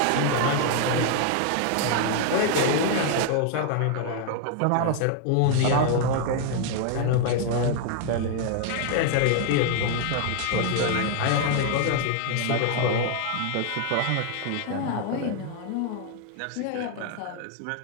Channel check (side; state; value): both; different; correlation 0.00